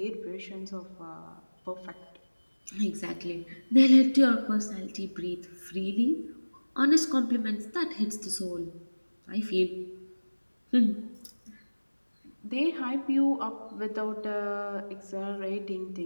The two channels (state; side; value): inverted; both; correlation -1.00